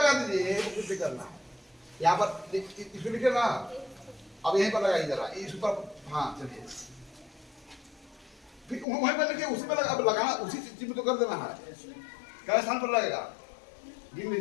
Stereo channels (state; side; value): drops out; right; at 8.8 s